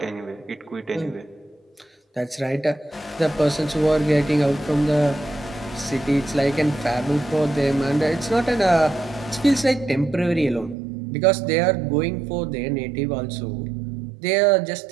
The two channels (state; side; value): drops out; left; at 10.8 s